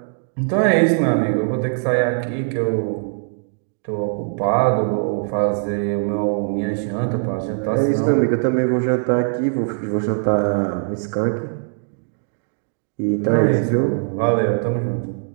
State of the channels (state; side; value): silent; left; digital silence